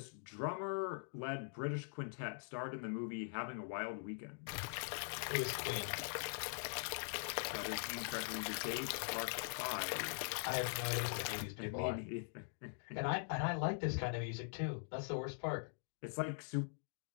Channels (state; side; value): silent; right; digital silence